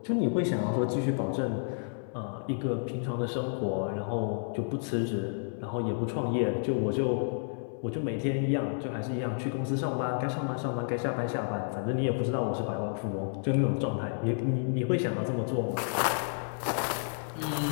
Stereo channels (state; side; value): silent; right; 57 dB below the other